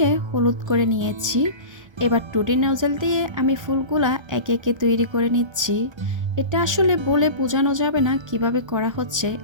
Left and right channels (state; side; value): late; left; 1.3 ms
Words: হলুদ করে নিয়েছি। এবার টুটি নজল দিয়ে আমি ফুলগুলা একে একে তৈরি করে নিচ্ছি। এটা আসলে বলে বোঝানো যাবে না কিভাবে করা হচ্ছে,